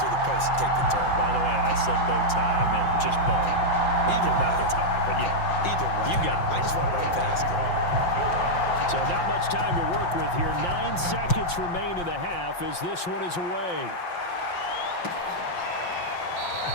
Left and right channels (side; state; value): right; late; 5.7 ms